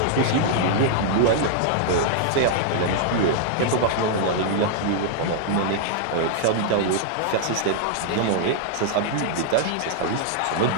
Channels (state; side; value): different; both; correlation -0.01